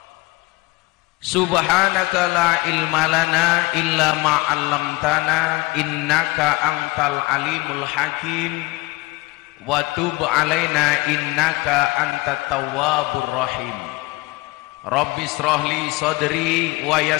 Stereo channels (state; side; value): quieter; right; 22.3 dB